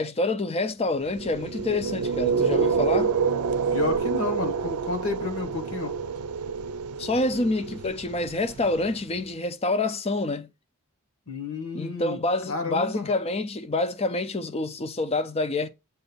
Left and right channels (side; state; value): both; normal; correlation 0.06